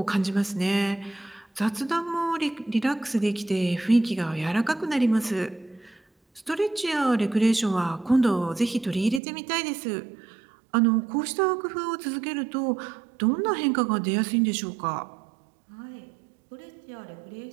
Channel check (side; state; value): left; drops out; at 9.2 s